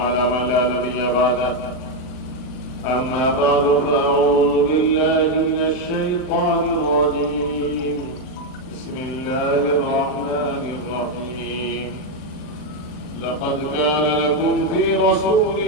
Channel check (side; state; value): right; late; 40 ms